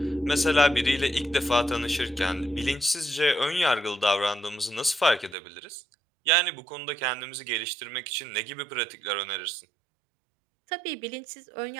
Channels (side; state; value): left; drops out; at 5.4 s